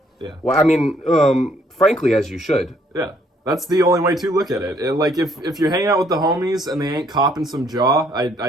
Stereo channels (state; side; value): normal; both; correlation 0.66